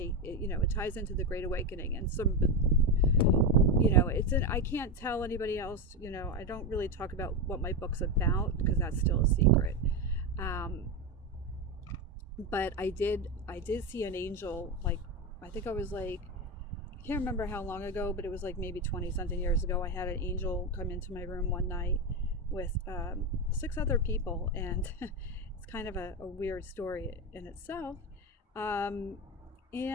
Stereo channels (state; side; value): normal; both; correlation 0.14